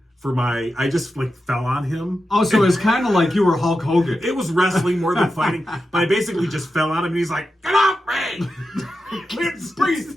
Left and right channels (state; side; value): normal; both; correlation 0.90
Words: for my. I just fell on him. Oh, so it's kind of like you were Hulk Hogan. It was wrestling more than fighting, but I basically just fell on him, and he's like, "Get off me! Can't